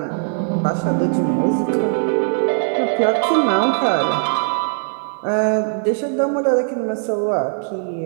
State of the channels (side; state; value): left; silent; 66 dB below the other